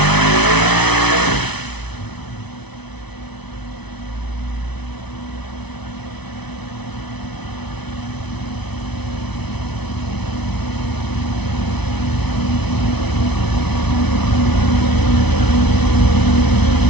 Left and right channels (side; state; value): right; late; 0.99 ms